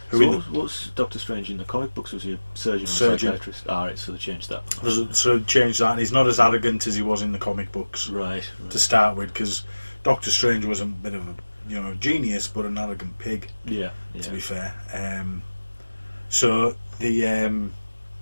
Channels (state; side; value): inverted; both; correlation -1.00